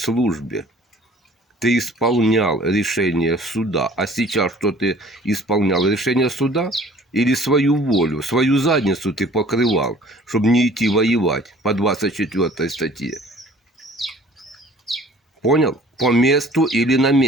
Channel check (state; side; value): normal; both; correlation 0.51